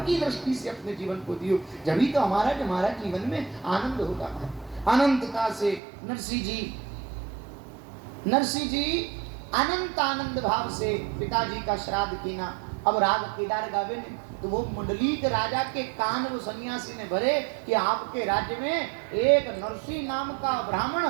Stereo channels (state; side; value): drops out; left; at 5.8 s